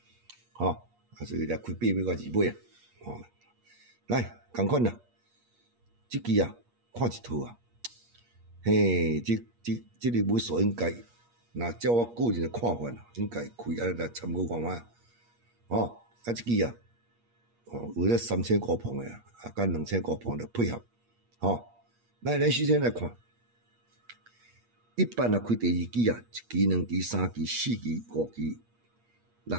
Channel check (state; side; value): late; left; 8.5 ms